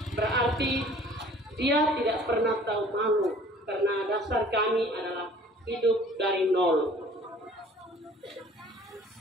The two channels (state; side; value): normal; both; correlation 0.51